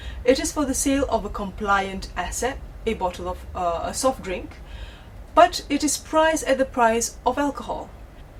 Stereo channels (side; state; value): both; identical; correlation 1.00